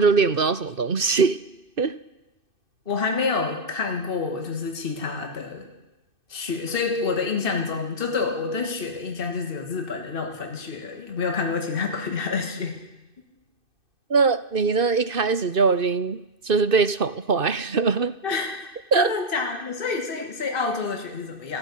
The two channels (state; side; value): late; left; 2.6 ms